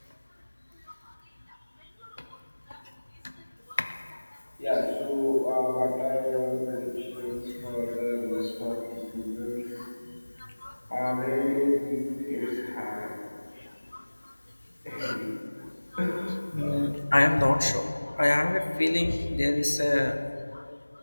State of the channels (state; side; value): inverted; both; correlation -1.00